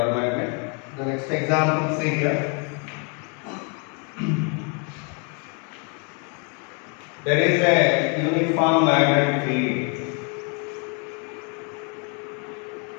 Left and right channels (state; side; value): quieter; right; 36.7 dB